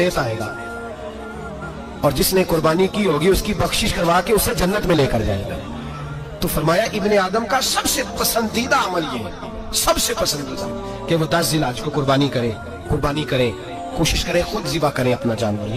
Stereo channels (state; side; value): identical; both; correlation 1.00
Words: आएगा और जिसने कुर्बानी की होगी उसकी बख्शिश करवा के उसे जन्नत में लेकर जाएगा। तो फरमाया इब्ने आदम का सबसे पसंदीदा अमल ये है, सबसे पसंदीदा, कि वो 10 ज़िलहज को कुर्बानी करे, कोशिश करे खुद ज़िबा करें अपना जानवर।